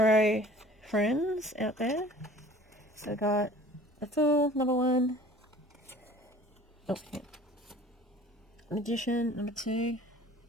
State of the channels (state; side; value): normal; both; correlation 0.48